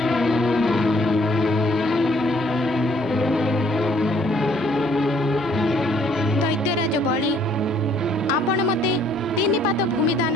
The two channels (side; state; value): right; noise; rumble, 26 dB below the sound